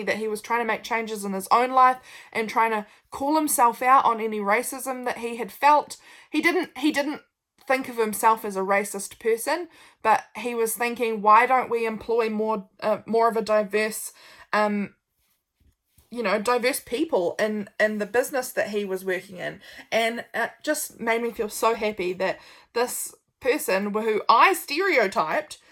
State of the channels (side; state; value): both; identical; correlation 1.00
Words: that he was trying to make changes in his own life and trying to call himself out on any racism that he had felt. He didn't think of himself as a racist person, but he was thinking, why don't we employ more of a diverse diverse people in the business that he was working in. And it just made me feel so happy that this person who I stereotyped